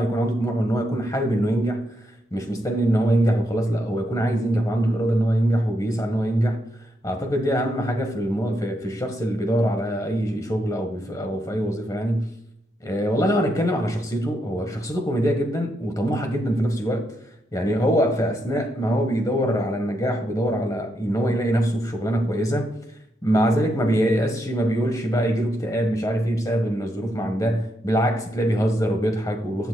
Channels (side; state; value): both; normal; correlation 0.80